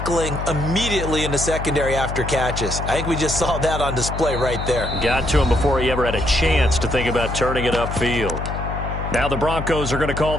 immediately in the secondary after catches. I think we just saw that on display right there. Got to him before he ever had a chance to think about turning it upfield. Now the Broncos are going to call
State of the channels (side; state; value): left; noise; hum, 5 dB below the sound